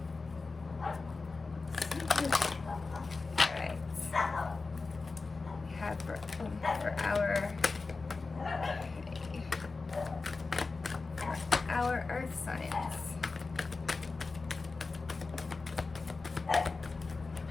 Alright. We have for our earth signs.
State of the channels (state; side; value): quieter; right; 4.0 dB